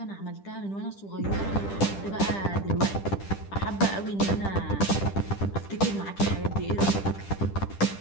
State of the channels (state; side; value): late; right; 10 ms